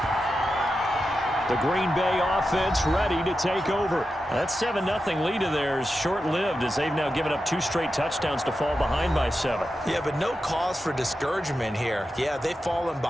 The Green Bay offense ready to take over. That 7-0 lead of theirs short-lived as they've now given up 2 straight touchdowns to fall behind by 7. Yeah, but no cause for discouragement here. Yeah, they've fallen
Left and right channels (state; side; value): normal; both; correlation 0.90